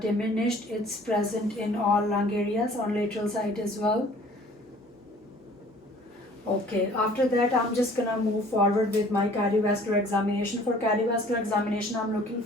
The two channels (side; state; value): both; normal; correlation 0.52